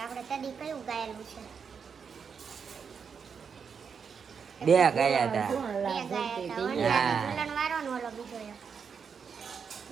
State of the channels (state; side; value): quieter; left; 6.4 dB